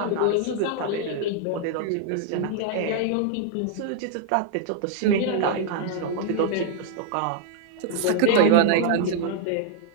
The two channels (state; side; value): different; both; correlation 0.00